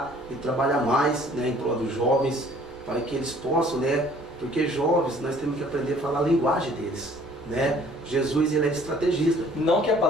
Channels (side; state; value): both; normal; correlation 0.56